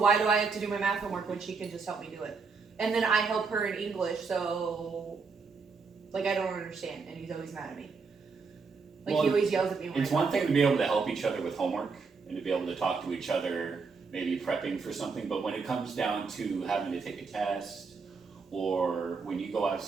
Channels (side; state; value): left; quieter; 4.8 dB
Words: do I have to do my math homework when she can just help me do it? And then I help her in English, so like I don't understand, and he's always mad at me. Like Well, he always yells at me when It's I one talk thing to to him. be able to help each other with homework and to be able to talk to each other, maybe prepping for something, but when it comes down to having to take a test, or when you go